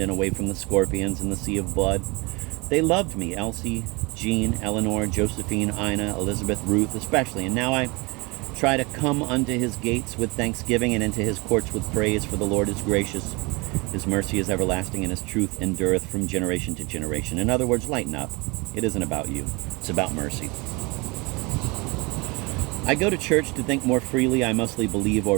and away from the scorpions and the sea of blood. They loved me, Elsie, Jean, Eleanor, Josephine, Ina, Elizabeth, Ruth especially, and now I try to come unto his gates with thanksgiving and into his courts with praise, for the Lord is gracious. His mercy is everlasting, and his truth endureth from generation to generation. In other words, lighten up. It isn't about you. It's about mercy. I go to church to think more freely. I mostly believe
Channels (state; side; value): quieter; left; 26.5 dB